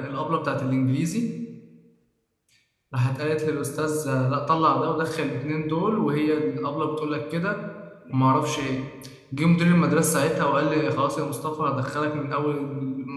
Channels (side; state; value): both; identical; correlation 1.00